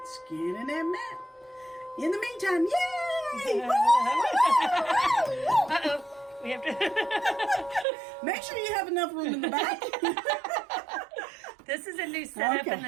scanning that mat. In the meantime, yay! Uh-oh. We have to... Make sure you have enough room in the back. This is a new setup in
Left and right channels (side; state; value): left; drops out; at 7.9 s